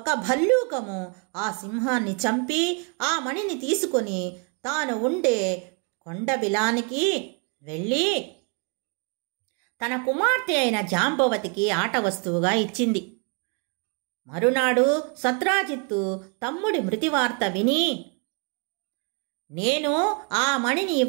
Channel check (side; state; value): left; quieter; 36.1 dB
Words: భల్లూకము ఆ సింహాన్ని చంపి ఆ మణిని తీసుకొని తాను ఉండే కొండబిలానికి వెళ్ళి తన కుమార్తె అయిన జాంబవతికి ఆట వస్తువుగా ఇచ్చింది. మరునాడు సత్రాజిత్తు తమ్ముడి మృతి వార్త విని, నేను ఆ మణిని